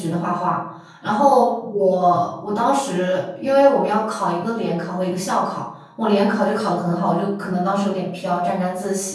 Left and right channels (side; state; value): both; identical; correlation 1.00